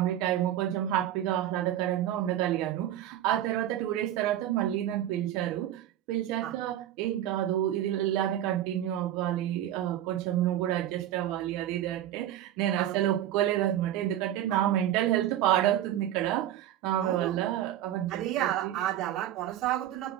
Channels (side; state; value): left; quieter; 12.1 dB